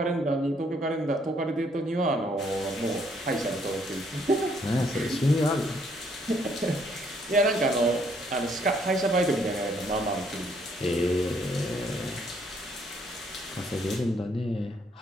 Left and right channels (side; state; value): both; normal; correlation 0.68